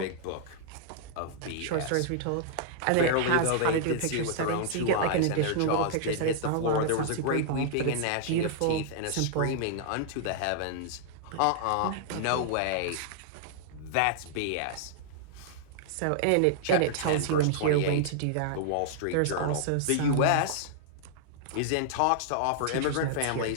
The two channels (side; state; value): both; different; correlation -0.01